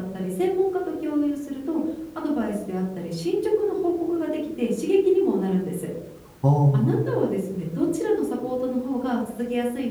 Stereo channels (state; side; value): identical; both; correlation 1.00